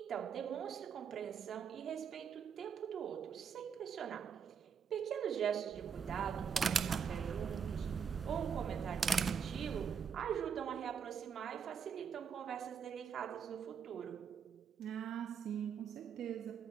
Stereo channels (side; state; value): left; quieter; 6.9 dB